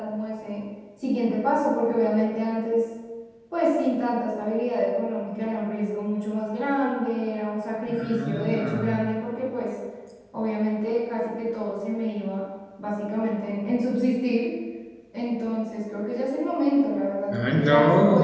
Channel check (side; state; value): both; identical; correlation 1.00